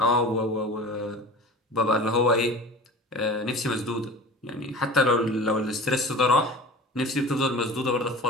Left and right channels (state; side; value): normal; both; correlation 0.37